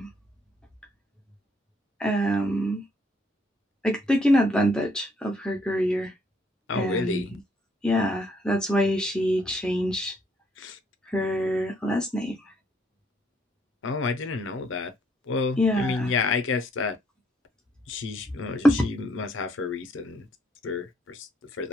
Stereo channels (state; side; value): normal; both; correlation 0.68